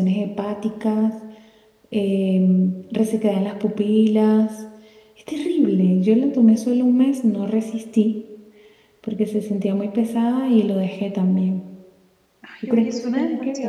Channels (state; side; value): identical; both; correlation 1.00